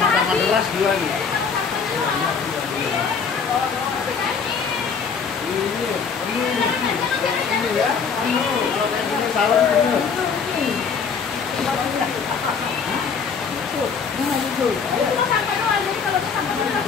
deras dua nih. Ini ya, kalau kayak gini salam penuh.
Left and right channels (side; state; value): right; quieter; 5.9 dB